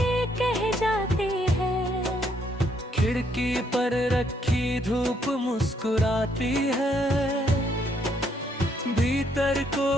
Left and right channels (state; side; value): normal; both; correlation 0.71